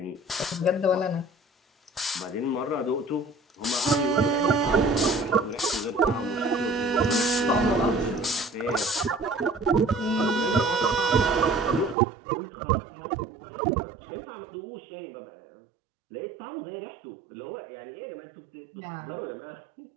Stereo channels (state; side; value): drops out; left; at 12.0 s